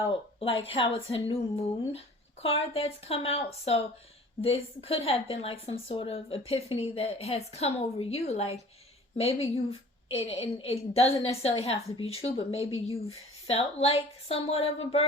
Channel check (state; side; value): normal; both; correlation 0.47